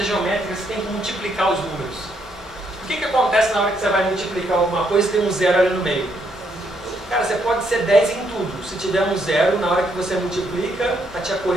geométricas você tem que multiplicar os números. O que acontece na hora que você vai multiplicar alguma coisa e tem um 0 ali no meio? Cara, você pode ser 10 em tudo. Se tiver um 0, na hora que você multiplica, a tia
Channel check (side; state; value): both; normal; correlation 0.74